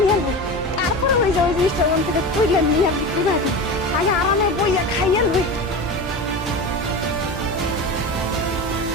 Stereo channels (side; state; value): both; normal; correlation 0.27